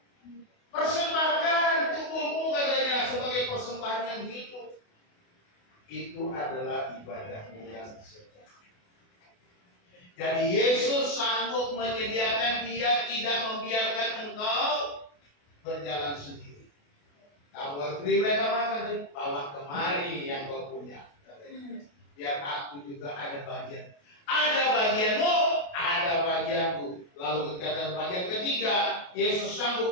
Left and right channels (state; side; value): late; right; 28 ms